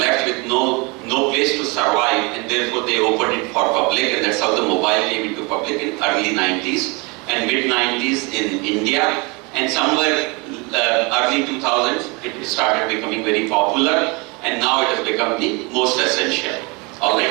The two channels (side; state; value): left; quieter; 28.5 dB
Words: with no place to survive, and therefore they opened it for public, and that's how the mobile came into public in early 90s and mid 90s in India, and somewhere early 2000s it started becoming very popular, and now it has become the most essential.